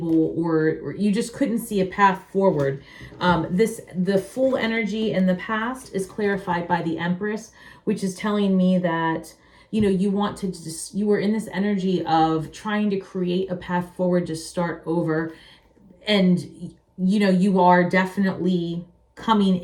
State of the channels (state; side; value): identical; both; correlation 1.00